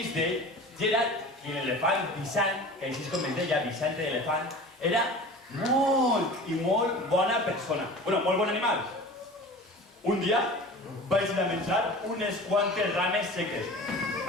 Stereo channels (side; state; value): both; normal; correlation 0.38